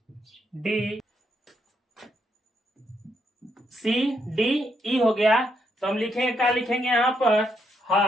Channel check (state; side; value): normal; both; correlation 0.77